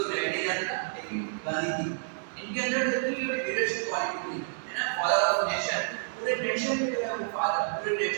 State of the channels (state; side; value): silent; left; digital silence